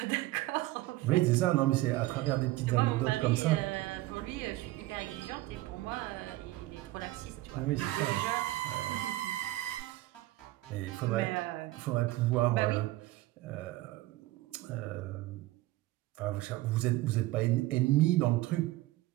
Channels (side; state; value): left; quieter; 17.7 dB